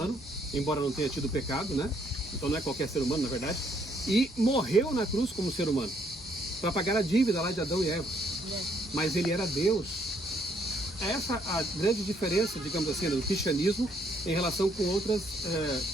embora não tenha tido pecado, né? Então não é qualquer ser humano, na verdade. E morreu na cruz como ser humano, para pagar a dívida lá de Adão e Eva. Mas ele era Deus. Essa é a grande diferença, digamos assim, do cristianismo em relação com outras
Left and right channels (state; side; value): normal; both; correlation 0.69